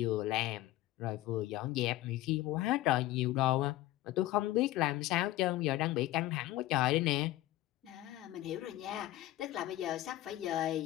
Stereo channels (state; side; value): quieter; right; 15.7 dB